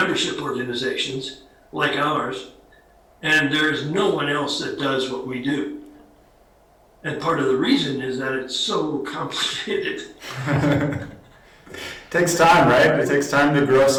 organizations like ours, and there's no one else that does what we do. And part of the reason is that it's so complicated. Takes time, right? It takes time to grow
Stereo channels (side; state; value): both; identical; correlation 1.00